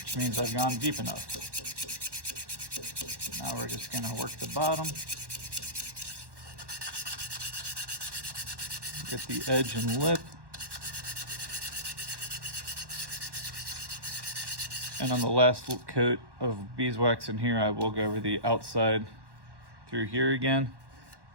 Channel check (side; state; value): left; late; 1.1 ms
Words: means I've gone deep enough. Now we're just gonna work the bottom. Get the edge and lip. And on the last coat of beeswax in here, I will go over the outside through here again.